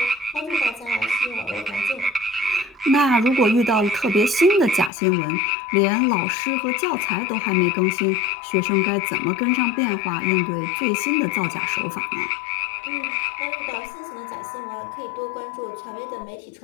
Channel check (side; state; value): right; drops out; at 4.9 s